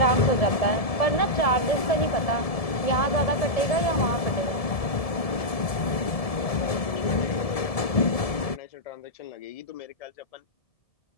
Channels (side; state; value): right; late; 1.7 ms